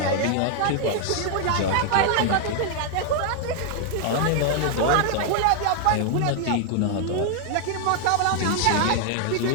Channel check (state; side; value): different; both; correlation 0.00